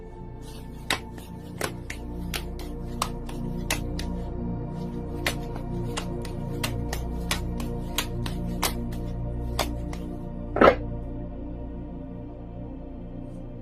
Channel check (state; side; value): identical; both; correlation 1.00